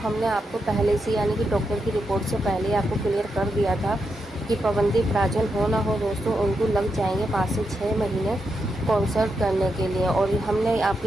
आपको पहले से यानी कि डॉक्टर की रिपोर्ट से पहले आपको क्लियर कर दिया था कि पवनदीप राजन हो ना हो दोस्तों, उनको लग जाएंगे 5 से 6 महीने कॉन्सर्ट करने के लिए। और हमने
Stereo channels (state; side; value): normal; both; correlation 0.84